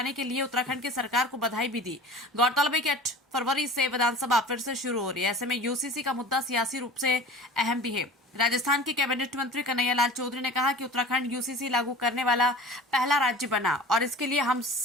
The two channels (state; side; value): normal; both; correlation 0.40